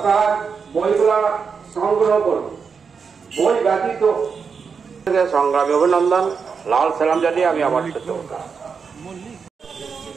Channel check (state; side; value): quieter; left; 5.8 dB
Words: বইগুলা সংগ্রহ করুন। বই ব্যতীত সংগ্রামী অভিনন্দন, লাল সালাম জানিয়ে আমি আমার